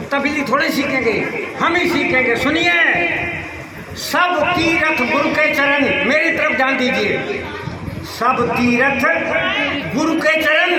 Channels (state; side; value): identical; both; correlation 1.00